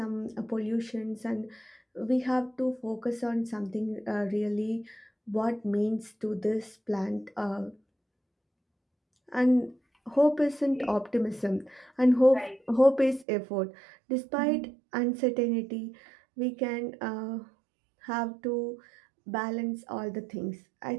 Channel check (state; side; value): drops out; left; at 13.2 s